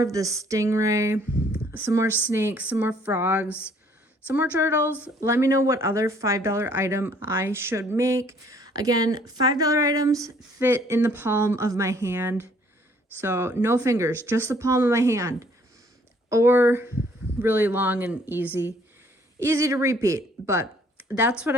the stingray, some more snakes, some more frogs, some more turtles. Let me know what other $5 item I should make. Again, $5 items fit in the palm of my hand. So no fingers, just the palm of my hand. Or really long and easy to repeat. But that's what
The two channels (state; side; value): normal; both; correlation 0.61